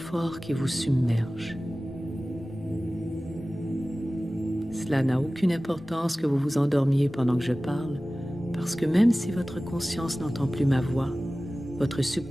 qui vous submerge. Cela n'a aucune importance que vous vous endormiez pendant que je parle, parce que même si votre conscience n'entend plus ma voix, votre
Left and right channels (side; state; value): both; normal; correlation 0.97